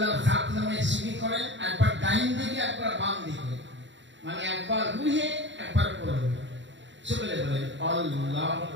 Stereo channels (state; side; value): late; left; 0.54 ms